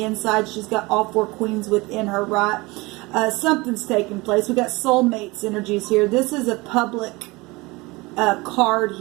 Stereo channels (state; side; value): quieter; left; 23.4 dB